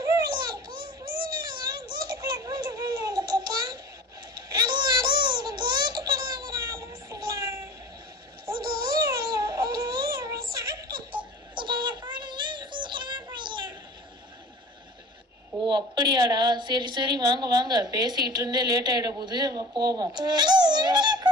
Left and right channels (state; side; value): normal; both; correlation 0.41